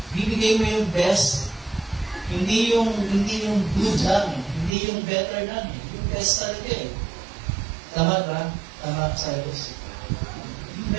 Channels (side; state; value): left; drops out; at 4.7 s